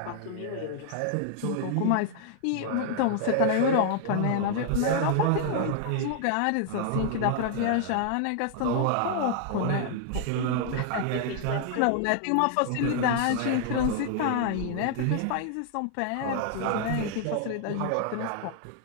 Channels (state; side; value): different; both; correlation 0.00